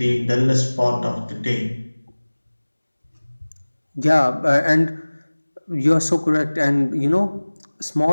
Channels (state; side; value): inverted; both; correlation -1.00